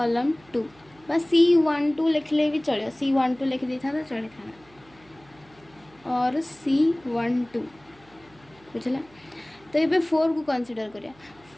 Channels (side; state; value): right; noise; hum, 28 dB below the sound